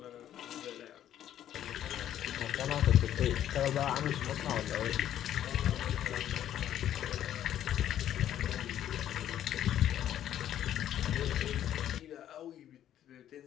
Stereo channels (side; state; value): right; quieter; 11.2 dB